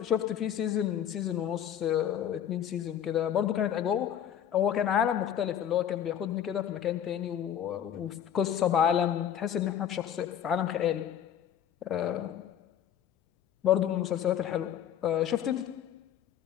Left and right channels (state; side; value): quieter; right; 9.7 dB